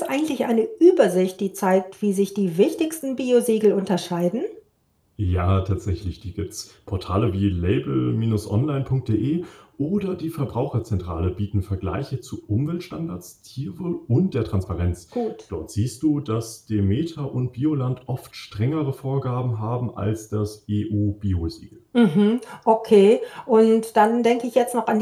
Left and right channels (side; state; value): both; identical; correlation 1.00